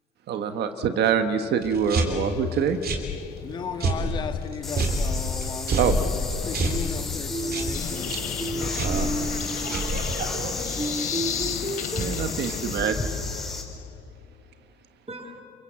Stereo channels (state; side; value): normal; both; correlation 0.46